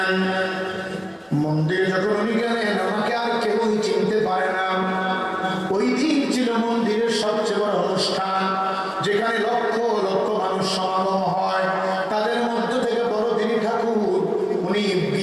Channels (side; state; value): both; identical; correlation 1.00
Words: মন্দিরে যখন উনি গেলেন, আমাকে আর কেউই চিনতে পারে না। ওই দিন ছিল মন্দিরের সবচেয়ে বড় অনুষ্ঠান, যেখানে লক্ষ লক্ষ মানুষ সমাগম হয়। তাদের মধ্য থেকে বড়দিনী ঠাকুর উনি